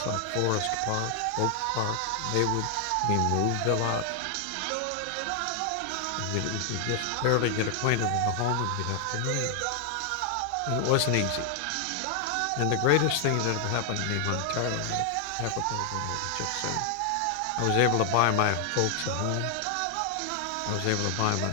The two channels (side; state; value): both; different; correlation 0.00